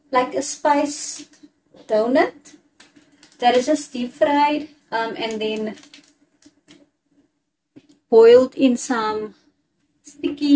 like a spiced donut that is just deep fried and then boiled in some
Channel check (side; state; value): both; identical; correlation 1.00